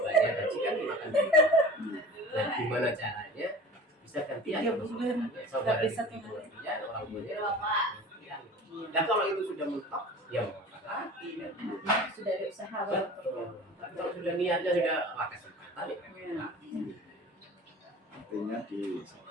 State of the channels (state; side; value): normal; both; correlation 0.40